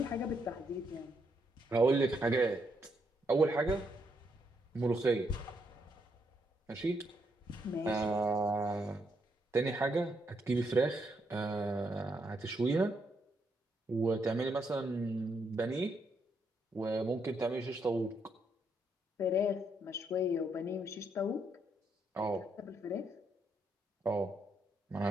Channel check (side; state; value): both; normal; correlation 0.77